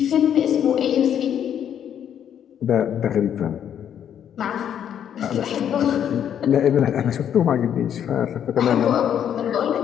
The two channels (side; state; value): right; quieter; 9.3 dB